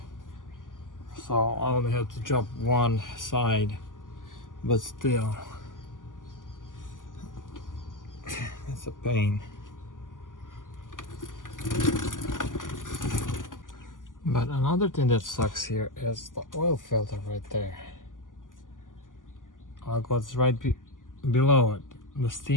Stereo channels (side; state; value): right; late; 0.88 ms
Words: so I only have to drop one side, but still it's a pain. But another thing that sucks here is the oil filter right there. Like what's right below it, the